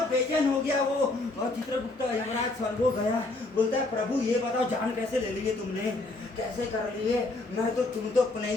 बेचैन हो गया वो, और चित्रगुप्त यमराज स्वर्गो गया, बोलता है प्रभु ये बताओ जान कैसे ले ली है तुमने, कैसे कर लिए? तुम तो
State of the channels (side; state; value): right; quieter; 3.0 dB